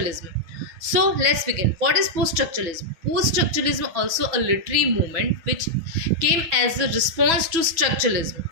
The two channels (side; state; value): left; late; 6.1 ms